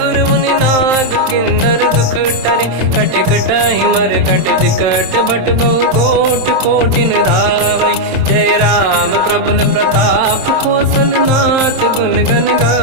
मुनि नाग किन्नर दुख टरे। कट कटाहि मर कट विकट भट बहु कोट कोटिन रावै। जय राम प्रबल प्रताप कौशल नाथ गुण गन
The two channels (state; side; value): late; left; 27 ms